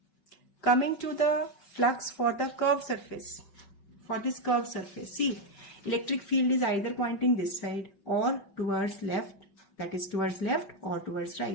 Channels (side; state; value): right; late; 5.3 ms